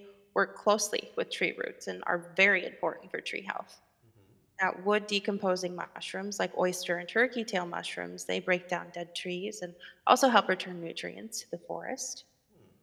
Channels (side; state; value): both; identical; correlation 1.00